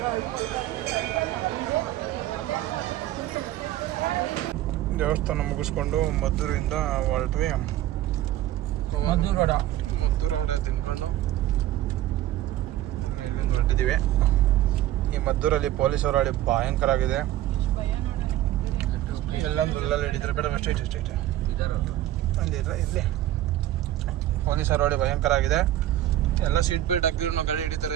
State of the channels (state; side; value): quieter; left; 13.8 dB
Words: ದೇವಸ್ಥಾನ ಮುಗಿಸ್ಕೊಂಡು ಮದ್ದೂರಿಂದ ಹೊರಟ್ವಿ. ಮದ್ದೂರು ವಡೆ ತಿನ್ಕೊಂಡು ಇಲ್ಲೊಂದು ಹೊರಟಿದ್ದೀವಿ. ಈ ಮದ್ದೂರಲ್ಲಿ ಪೊಲೀಸರು ಹಳ್ಳಿ ಭಯಂಕರ ಆಗಿದೆ. ಎಲ್ಲಂದ್ರಲ್ಲೆಲ್ಲ ಹಿಡಿದ್ರೆ ಬೇಡ ಅಷ್ಟೇ ಅಲ್ಲಿದ್ರೆ ಇಲ್ಲಿ ಪೊಲೀಸರು ಹಳ್ಳಿ ಭಯಂಕರ ಆಗಿದೆ. ಎಲ್ಲ ಸೀಟ್ ಬೆಲ್ಟ್ ಹಾಕಿದ್ರು ಗಾಡಿ